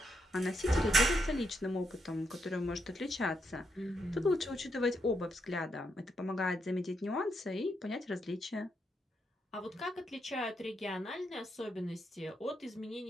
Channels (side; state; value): both; normal; correlation 0.80